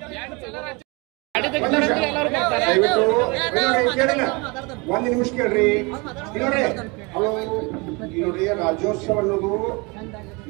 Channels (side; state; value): left; quieter; 28.1 dB